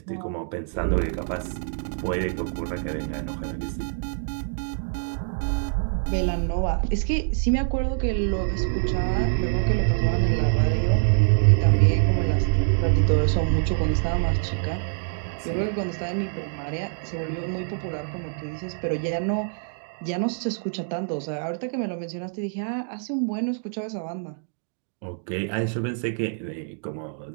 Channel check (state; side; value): silent; left; digital silence